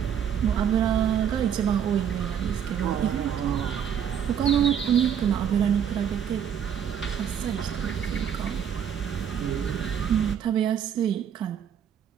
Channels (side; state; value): left; quieter; 8.6 dB